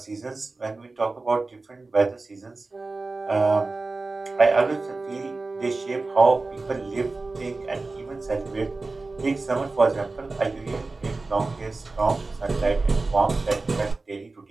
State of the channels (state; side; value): quieter; left; 3.5 dB